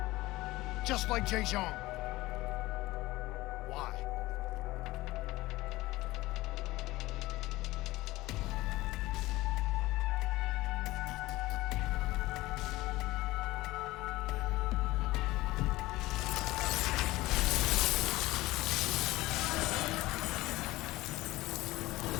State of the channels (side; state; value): right; quieter; 18.8 dB